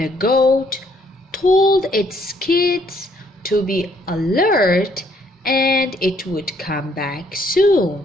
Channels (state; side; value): normal; both; correlation 0.67